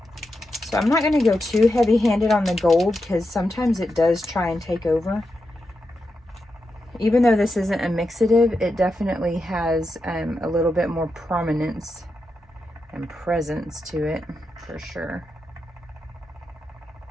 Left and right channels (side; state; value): both; normal; correlation 0.87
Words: So I'm not going to go too heavy-handed on the gold because sometimes it does try and take over. Even though this isn't a mixative, it definitely has a little bit more prominence and presence to it, for sure.